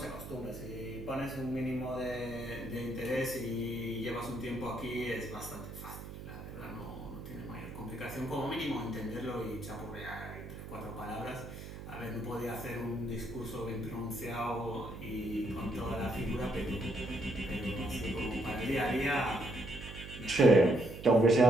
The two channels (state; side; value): noise; right; hum, 11 dB below the sound